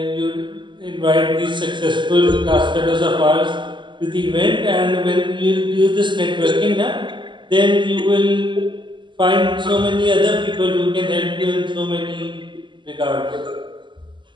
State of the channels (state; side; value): late; left; 0.23 ms